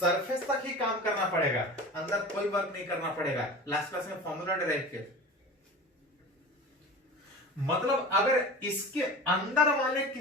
तक ही काम करना पड़ेगा, अंदर कोई वर्क नहीं करना पड़ेगा। लास्ट क्लास में फॉर्मूला डिराइव किया। मतलब अगर इसके अंदर वाले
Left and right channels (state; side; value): normal; both; correlation 0.35